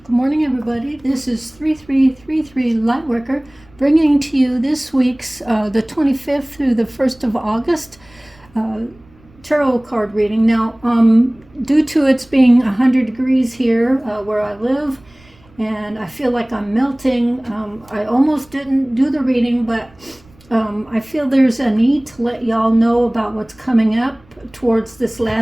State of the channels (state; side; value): noise; right; rumble, 28 dB below the sound